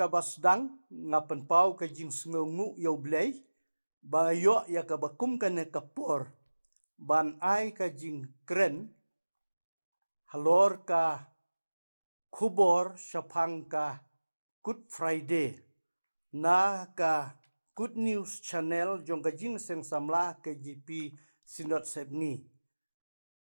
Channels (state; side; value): inverted; both; correlation -1.00